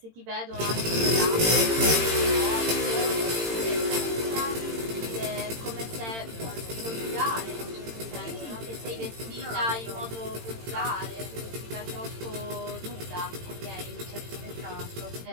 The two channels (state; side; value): late; left; 18 ms